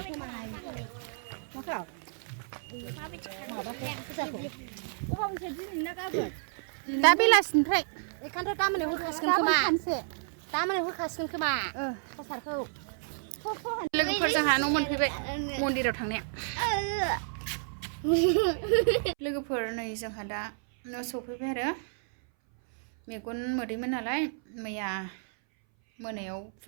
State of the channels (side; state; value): left; silent; 57 dB below the other